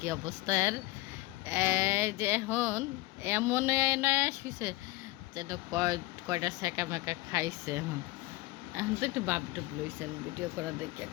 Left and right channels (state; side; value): quieter; right; 20.4 dB